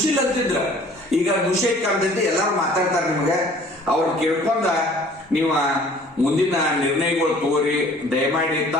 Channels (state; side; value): normal; both; correlation 0.52